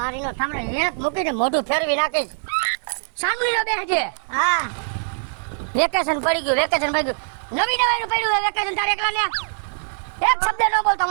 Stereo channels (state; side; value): silent; left; digital silence